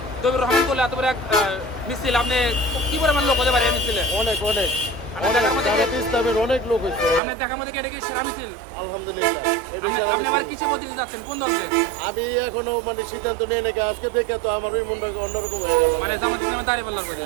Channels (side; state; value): left; drops out; at 7.2 s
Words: দবির রহমান করলে এত বড় এক মিছিল, আপনি কি পরিমাণ লোক হতে পারে এই মিছিলে? অনেক অনেক আপনার অনেক দেখা মধ্যে জামাত ইসলামের অনেক লোক হয়েছে। আপনার দেখা মধ্যে এটা কি সেরা মিছিল? আলহামদুলিল্লাহ এটা সেরা আপনি আবার মিছিল। কিসে বলতে যাচ্ছেন, কোন দলকে? আমি এখনো মানে সিদ্ধান্ত নিয়ে নাকি আজকে দেখে তো আমার ওই মনটা অন্যরকম হয়ে গেল। মানে জামাত ইসলামের দাঁড়িপাল্লার করে।